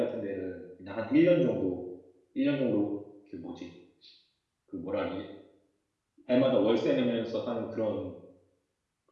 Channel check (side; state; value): both; identical; correlation 1.00